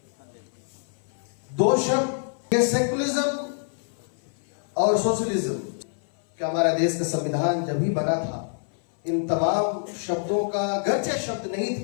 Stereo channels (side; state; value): right; silent; 57 dB below the other